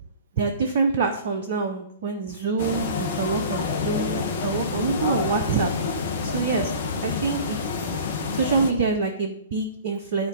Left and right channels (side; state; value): both; inverted; correlation -0.41